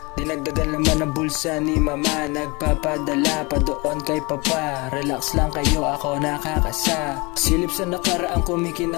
Dinagdagan naman ang bulsa ni mama. Nagpapadala pa doon kay papa. Relax lang kayo, ako nakakasa. Silip sa nakaraang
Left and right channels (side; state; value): right; quieter; 26.8 dB